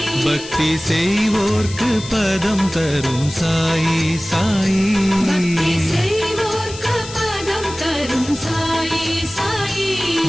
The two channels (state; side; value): noise; left; hiss, 14 dB below the sound